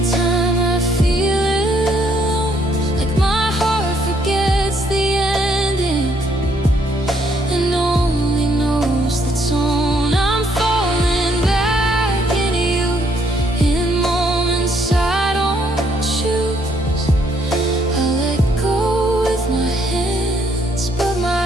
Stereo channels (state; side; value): normal; both; correlation 0.69